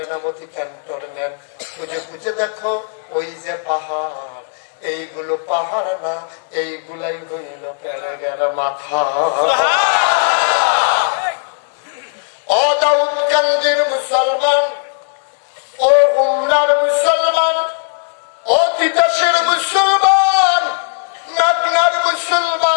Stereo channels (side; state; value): right; silent; digital silence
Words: ক্যান্টনমেন্ট। খুঁজে খুঁজে দেখো ওই যে পাহাড়, এইগুলো পাহাড় না, এইগুলাই হইল প্যারেকের মাথা। ও দাউদকান্দির মুসলমান, ও গুমনার মুসলমান, ও তিতাসের মুসলমান, নাগনার